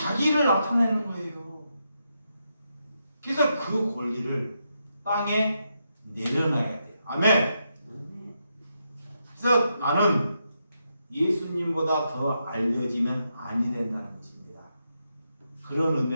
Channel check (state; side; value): inverted; both; correlation -0.83